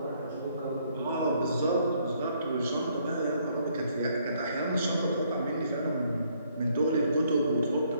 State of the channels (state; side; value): inverted; both; correlation -0.68